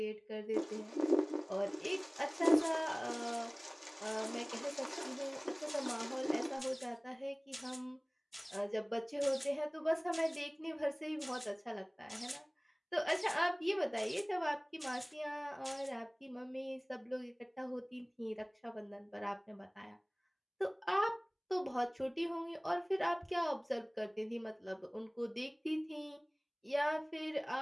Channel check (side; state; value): both; identical; correlation 1.00